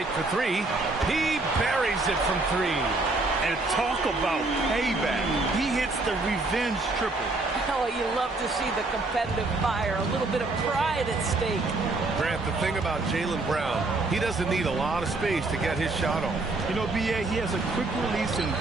for 3. He buries it from 3. And talk about payback. He hits the revenge triple. Oh, you love to see the competitive fire. A little bit of pride at stake. Grant, the thing about Jaylen Brown, he doesn't need a lot of space to get his shot off. You know, B.A., he has a quick release and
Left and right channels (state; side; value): quieter; left; 3.2 dB